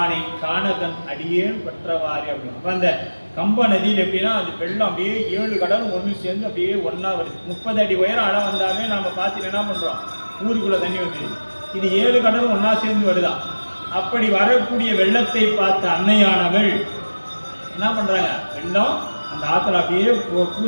காணகன் அடியேன் பற்றவாறு அப்படின்னு. அப்ப அந்த கம்ப நதியில் எப்படின்னா, அது வெள்ளம் அப்படியே 7 கடலும் ஒன்று சேர்ந்து அப்படியே ஒன்னா வருது. 30 அடி உயரம் அளவு வந்தாவே நாம பார்த்து என்ன பண்றோம், ஊருக்குள்ள தண்ணி வந்துடுது. இது 7 கடலும் ஒன்னா சேர்ந்து வருதா. அப்படி வரக்கூடிய வெள்ளத்தை பார்த்த அன்னையானவள் என்ன பண்றாங்க, வெள்ளம் அந்த ஆத்துல அப்படியே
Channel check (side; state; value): both; inverted; correlation -1.00